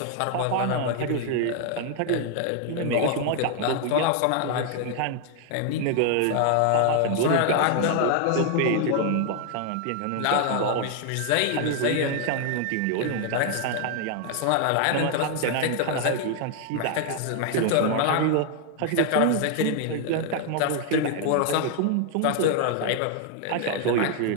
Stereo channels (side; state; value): both; different; correlation 0.00